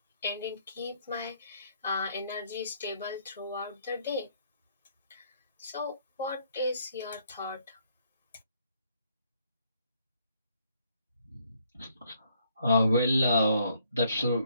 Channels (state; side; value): inverted; both; correlation -0.69